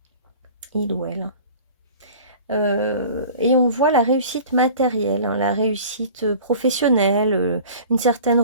Il ou elle. Et on voit la réussite matérielle, hein, la réussite professionnelle, une certaine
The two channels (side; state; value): both; inverted; correlation -0.43